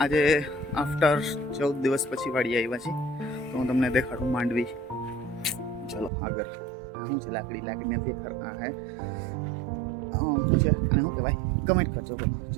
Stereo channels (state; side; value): drops out; left; at 6.1 s